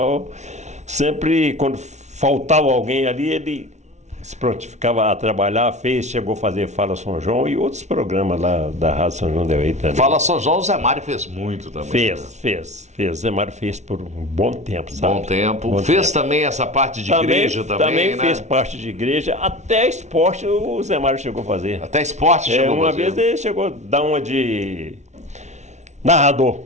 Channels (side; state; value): left; late; 0.33 ms